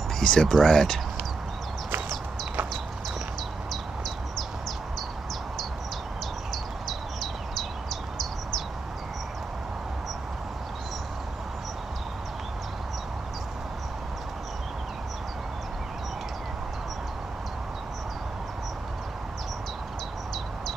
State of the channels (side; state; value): left; quieter; 3.8 dB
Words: Piece of bread.